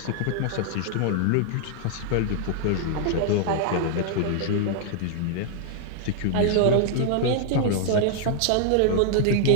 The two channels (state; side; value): different; both; correlation -0.01